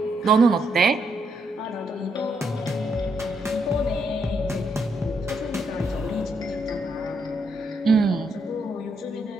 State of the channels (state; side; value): normal; both; correlation 0.77